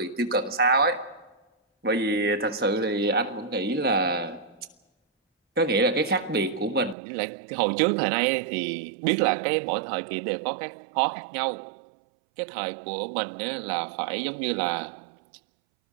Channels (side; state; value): left; drops out; at 7.0 s